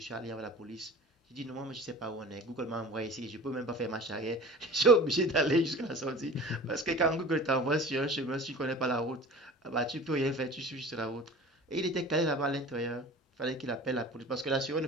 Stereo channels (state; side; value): normal; both; correlation 0.40